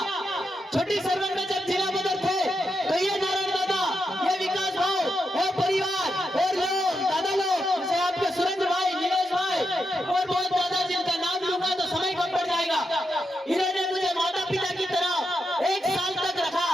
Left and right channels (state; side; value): normal; both; correlation 0.85